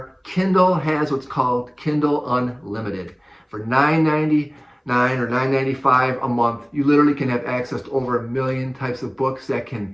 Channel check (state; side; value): identical; both; correlation 1.00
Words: Kindle has what's called Kindle Unlimited. For $9.99 or $9.95 a month, you literally can have access to over 1 million types of books that can